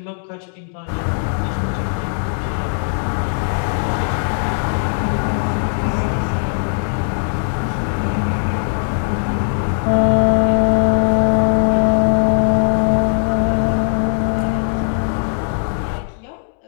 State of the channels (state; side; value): silent; right; digital silence